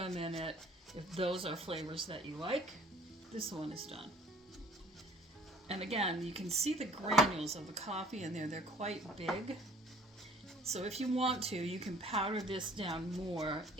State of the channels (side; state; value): both; normal; correlation 0.54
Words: in it, if those are flavors that you like. This one is done. And again, you can see the granules of the coffee in there. They're quite big. So if you want to, you can powder this down more